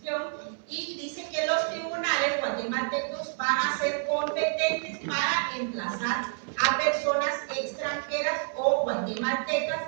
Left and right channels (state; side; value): silent; left; 59 dB below the other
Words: y dice que los tribunales guatemaltecos van a ser competentes para emplazar a personas extranjeras o guatemaltecas